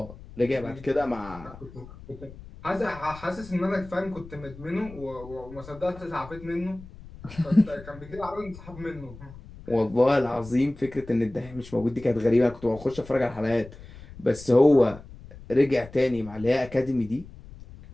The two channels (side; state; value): left; noise; rumble, 17 dB below the sound